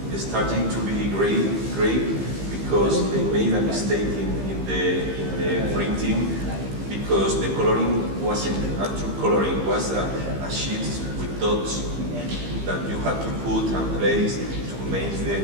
is starting to be gray because they made a mistake in the printing because the coloring wasn't a true coloring, it was a sheet with dots that you had to put and place to make the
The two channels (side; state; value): left; late; 15 ms